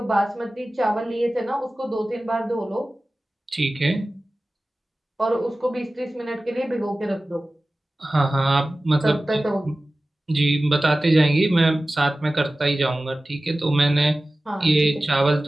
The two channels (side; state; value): both; normal; correlation 0.96